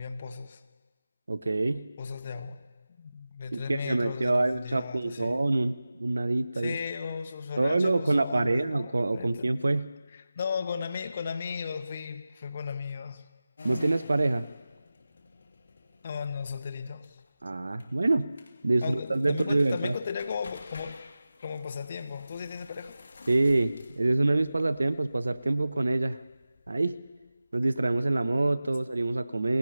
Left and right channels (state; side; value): inverted; both; correlation -0.95